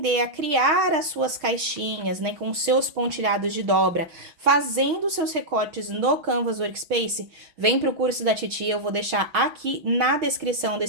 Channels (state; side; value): late; left; 6.3 ms